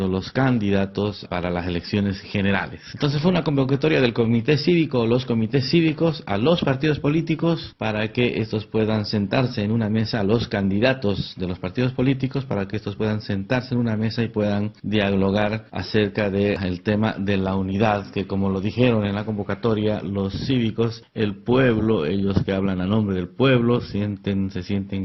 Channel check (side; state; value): both; identical; correlation 1.00